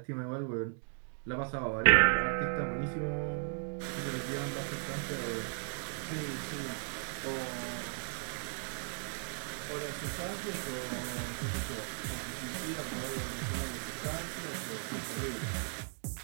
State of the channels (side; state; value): left; silent; 54 dB below the other